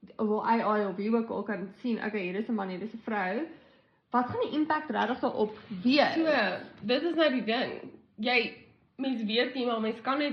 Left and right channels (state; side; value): identical; both; correlation 1.00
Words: wil AI of wie ook al kan sien, okay, hier is 'n man, hier is 'n vrou. Wat gaan die impact regtig daarop wees? So, dit is nou die ding. Mens weet nie, maar mens kan